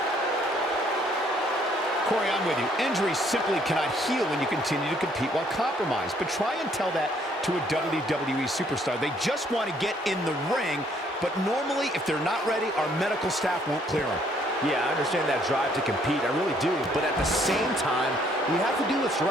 Corey, I'm with you. Injuries simply cannot heal when you continue to compete while compromised. But try and tell that to a WWE superstar. They just want to get in the ring, but normally, if they're not ready, our medical staff won't clear them. Yeah, I understand that drive to compete. I really do. But at the same time, you have to do what's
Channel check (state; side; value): normal; both; correlation 0.65